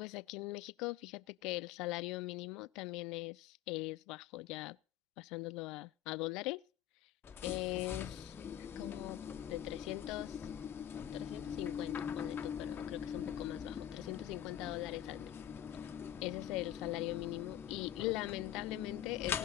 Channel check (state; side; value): quieter; right; 11.8 dB